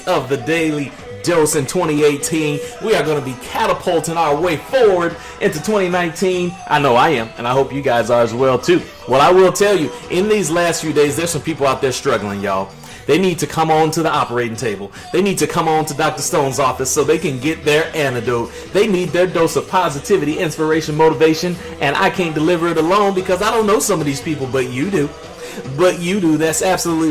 of the Daily Dose in 2018. We are going to be catapulting our way forward into 2019. I know I am, and I hope you guys are as well too. Well, I will tell you, in these last few days, there's some people out there struggling, y'all. They need to come on to the operating table. They need to come on to Dr. Stone's office so they can get their antidote. They need their dose of positivity, inspiration, motivation, and I can't deliver it alone because I don't know some of these people, but you do. That's absolutely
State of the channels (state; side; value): identical; both; correlation 1.00